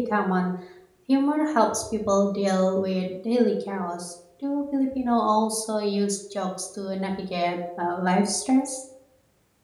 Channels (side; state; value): both; identical; correlation 1.00